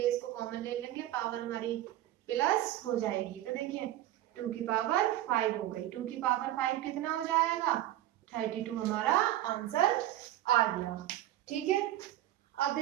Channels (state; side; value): quieter; left; 13.9 dB